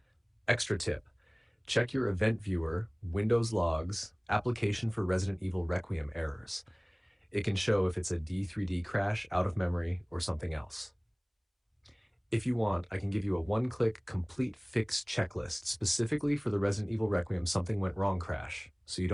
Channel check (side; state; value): both; identical; correlation 1.00